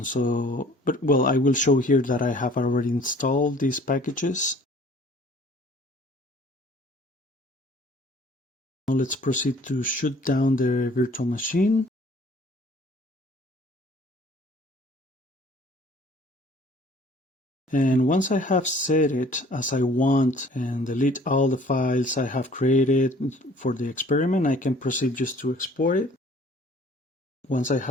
I will show here that I have already installed these packages. Now let's proceed to shut down the virtual machine. And once I have set it as I want and delete all the files I have created for the experiment, I can proceed just to export it. Once I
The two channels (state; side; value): normal; both; correlation 0.53